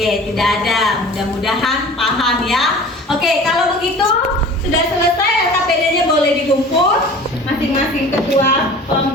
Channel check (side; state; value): both; normal; correlation 0.42